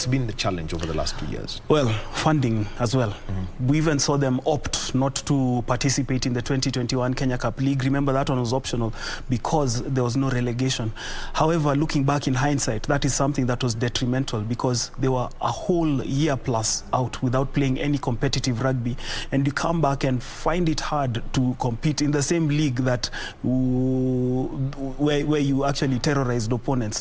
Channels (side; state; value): both; identical; correlation 1.00